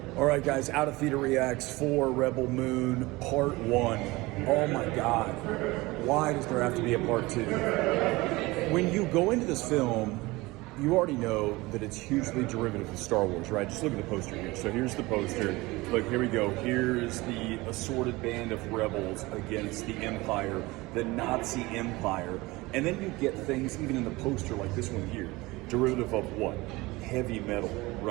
All right, guys, Out of Theater Reacts for Rebel Moon Part 1. Oh my God, why does there have to be a Part 2? When you go into this film, you already know that it's hugely derivative of Star Wars, right? Just look at the poster here. So here's the poster. Look, here we go. Here's the assorted band of rebels against the Empire, the Nazi Empire. And then you get things, even in the poster like this one here, derivative of what? Heavy metal,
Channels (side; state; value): left; quieter; 21.6 dB